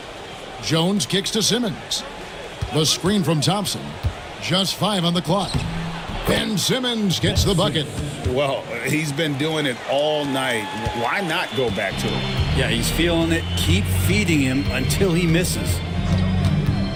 Jones kicks to Simmons. The screen from Thompson. Just 5 on the clock. Ben Simmons gets the bucket. Well, he's been doing it all night. Why not go back to him? Yeah, he's feeling it. Keep feeding him until he misses.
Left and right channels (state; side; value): identical; both; correlation 1.00